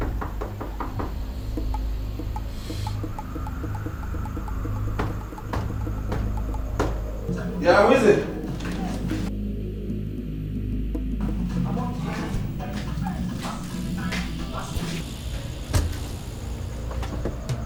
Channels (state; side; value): identical; both; correlation 1.00